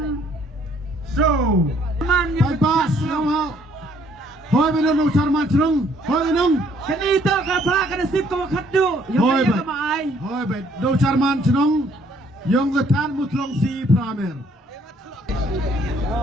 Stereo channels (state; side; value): normal; both; correlation 0.64